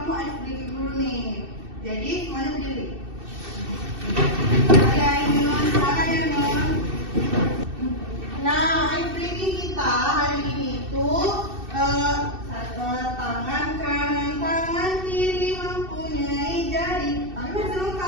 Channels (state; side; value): late; left; 2.6 ms